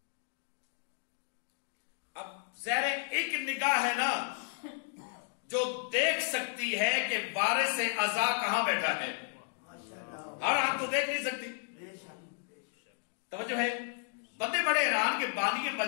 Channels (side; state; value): right; silent; 56 dB below the other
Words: اب زہر ایک نگاہ ہے نا جو دیکھ سکتی ہے کہ وارث اعضا کہاں بیٹھا ہے. ہر آنکھ تو دیکھ نہیں سکتی. توجہ ہے؟ بندے بڑے حیران کہ بانی